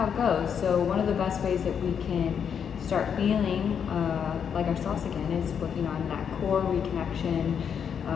it goes. So one of the best ways that we can start feeling like ourselves again is working on that core reconnection,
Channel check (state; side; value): quieter; right; 7.6 dB